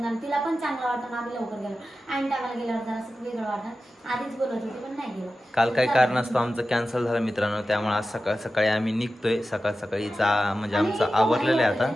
तिला पण चांगलं वाटतं ना आम्ही लवकर गेलो. आणि टायमाला गेल्यावर जरा असं वेगळं वाटतं. आधीच बोलत होते पण नाही गेलो. काल काही कारण असतं आमचं कॅन्सल झालं मित्रांनो, त्यामुळे आज सकाळी आम्ही निघतोय. सकाळीचा म्हणजे आमचं आवरलेलं आहे आता.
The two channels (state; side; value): normal; both; correlation 0.93